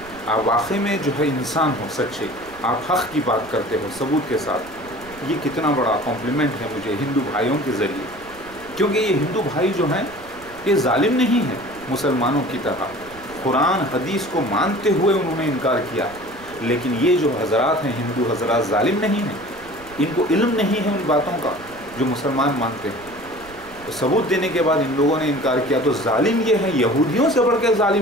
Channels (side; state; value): right; noise; rumble, 22 dB below the sound